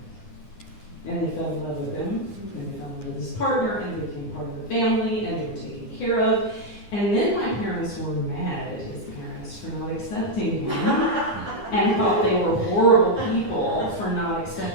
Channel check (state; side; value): late; right; 9.8 ms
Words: And they fell in love with him, and they fell in love with his partner, and they became part of the family, and they were taken care of. And then my parents were mad at his parents for not accepting him, and thought they were horrible people for not